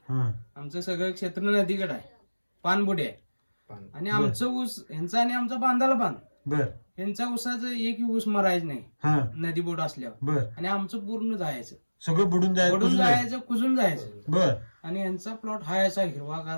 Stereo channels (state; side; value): inverted; both; correlation -1.00